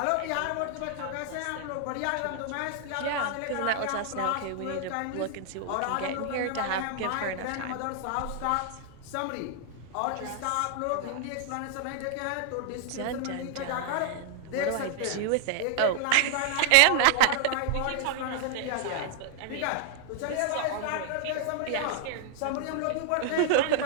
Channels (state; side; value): different; both; correlation -0.01